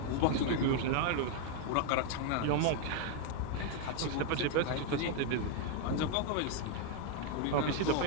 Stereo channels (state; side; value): different; both; correlation 0.01